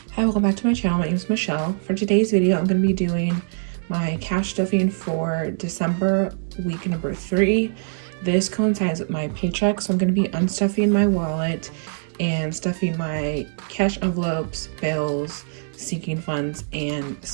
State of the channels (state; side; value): silent; left; digital silence